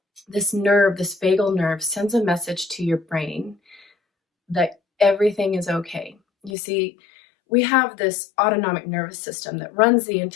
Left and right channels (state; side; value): drops out; right; at 6.5 s